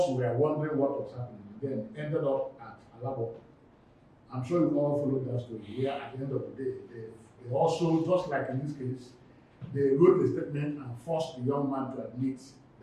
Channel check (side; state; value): both; identical; correlation 1.00